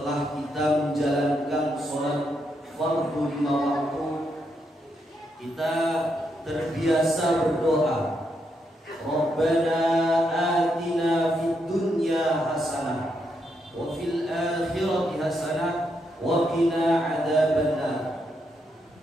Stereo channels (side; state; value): both; normal; correlation 0.80